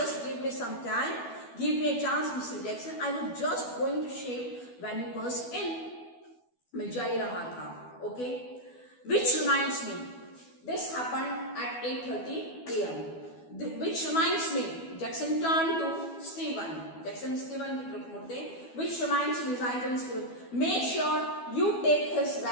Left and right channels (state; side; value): late; right; 12 ms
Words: give me some time, give me a chance, Mr. Jackson. I was just going to shave when you burst in. मैं जा ही रहा था, okay. Which reminds me, this happened at 8:30 a.m. Which reminds me, Jackson turned to Stephen. Jackson Stephen की तरफ मुड़ते. Which reminds me, Stephen, make sure you take his